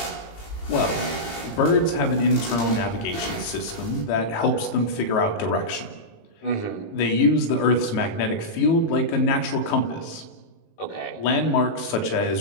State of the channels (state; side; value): late; right; 19 ms